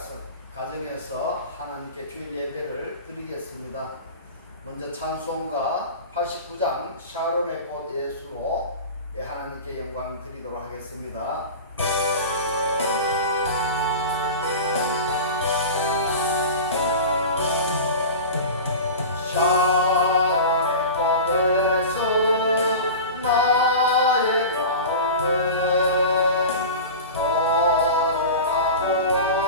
가정에서 하나님께 주일 예배를 드리겠습니다. 먼저 찬송가 89장 샤론의 꽃 예수로 하나님께 영광 드리도록 하겠습니다.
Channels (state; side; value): inverted; both; correlation -0.32